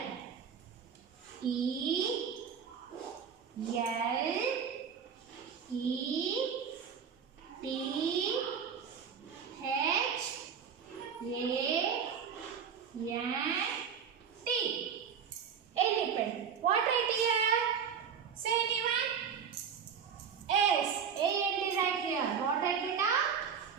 E L E T H A N T elephant. What right here? Say anyone? S. A and D right here. What right beta?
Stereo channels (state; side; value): quieter; left; 7.2 dB